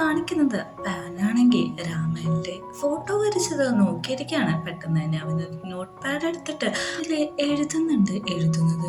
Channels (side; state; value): both; identical; correlation 1.00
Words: പാനാണെങ്കിൽ രാമന്റെ ഫോട്ടോ വരച്ചത് നോക്കിയിരിക്കുകയാണ്. പെട്ടെന്ന് തന്നെ അവന് നോട്ട് പാഡ് എടുത്തിട്ട് അതിൽ എഴുതുന്നത്